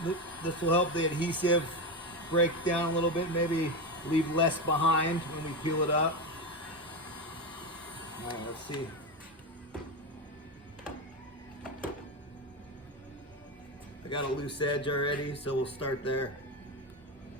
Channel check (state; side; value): normal; both; correlation 0.16